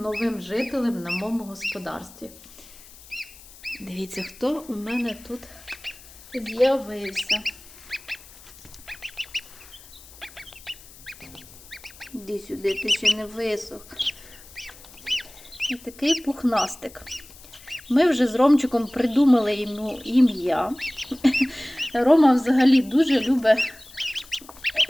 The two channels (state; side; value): noise; left; hiss, 21 dB below the sound